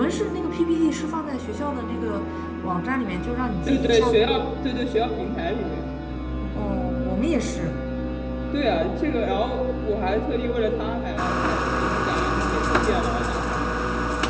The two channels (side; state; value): both; identical; correlation 1.00